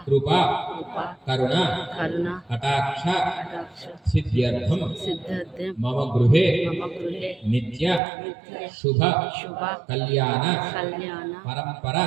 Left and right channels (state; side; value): drops out; left; at 8.0 s